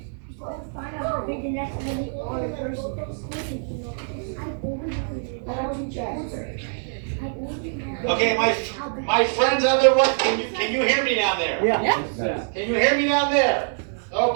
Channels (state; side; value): silent; left; digital silence